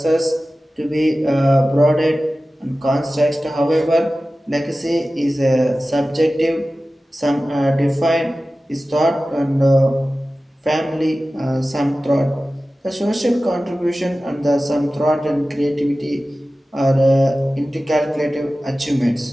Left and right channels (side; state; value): both; normal; correlation 0.96